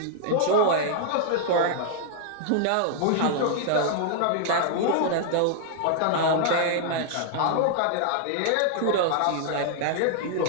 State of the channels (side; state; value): both; different; correlation -0.01